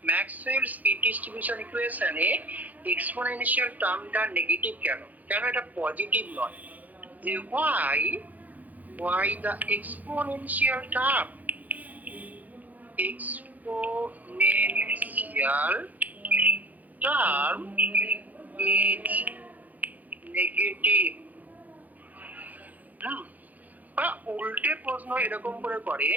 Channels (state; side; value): late; left; 0.080 ms